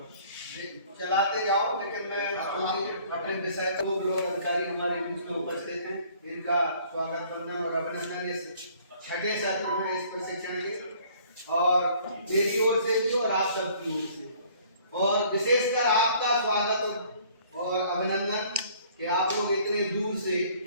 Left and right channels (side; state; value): both; inverted; correlation -0.57